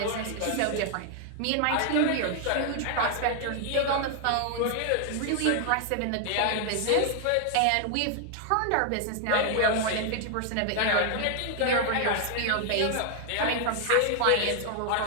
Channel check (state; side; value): different; both; correlation 0.00